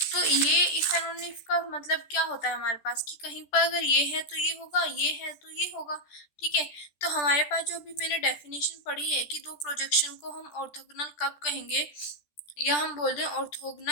तो ये इफ एंड ओनली इफ का मतलब क्या होता है हमारे पास कि कहीं पर अगर ये है तो ये होगा, ये है तो ये होगा। ठीक है, तो हमारे पास जो अभी मैंने डेफिनेशन पढ़ी है कि दो प्रोजेक्शन को हम ऑर्थोगोनल कब कहेंगे, या हम बोल रहे हैं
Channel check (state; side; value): late; right; 14 ms